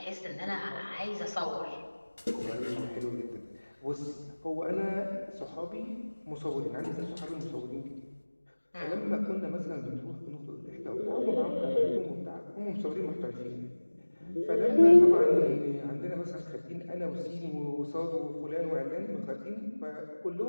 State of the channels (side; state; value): both; inverted; correlation -1.00